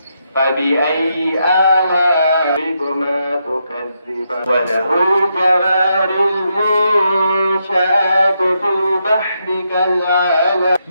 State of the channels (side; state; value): both; inverted; correlation -0.81